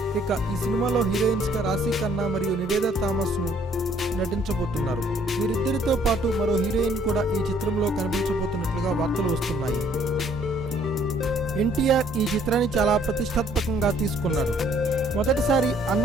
ఇక ఈ సినిమాలో హీరోయిన్స్ గా రాశి ఖన్నా మరియు నివేదా థామస్ ను నటించబోతున్నారు. వీరిద్దరితో పాటు మరో హీరోయిన్ కూడా ఈ చిత్రంలో కనిపించబోతున్నట్లుగా వార్తలు వస్తున్నాయి. ఎన్టీఆర్ ఈ చిత్రాన్ని చాలా ప్రతిష్టాత్మకంగా తీసుకున్నాడు. మొదటిసారి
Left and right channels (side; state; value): both; normal; correlation 0.62